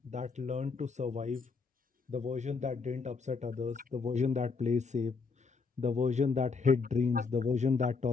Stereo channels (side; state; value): right; quieter; 4.8 dB